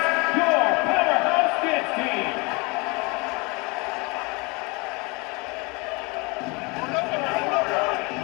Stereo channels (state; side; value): quieter; right; 27.8 dB